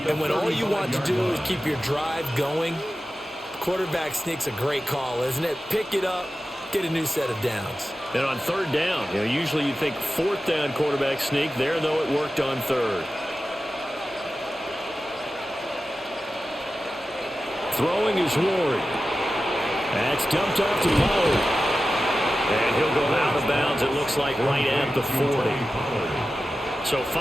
And when all you want to do is keep your drive going, quarterback sneak's a great call, isn't it? Pick it up, get a new set of downs. And on 3rd down, usually you think 4th down quarterback sneak. There, though, it worked on 3rd. Throwing is Ward. That's dumped off to Pollard. And he'll go out of bounds, it looks like, right at the 40. So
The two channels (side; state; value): both; normal; correlation 0.93